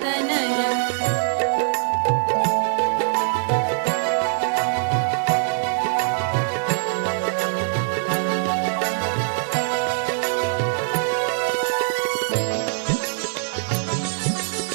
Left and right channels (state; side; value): silent; left; digital silence